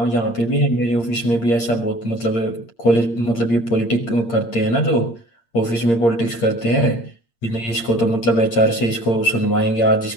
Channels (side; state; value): right; late; 8.7 ms